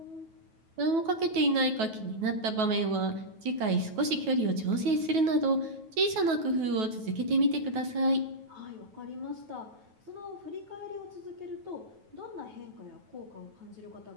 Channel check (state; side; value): late; left; 9.3 ms